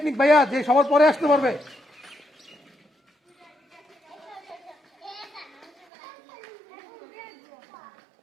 ভাইয়া, যে সবার পরে আসতে পারবে।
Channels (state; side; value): drops out; left; at 5.9 s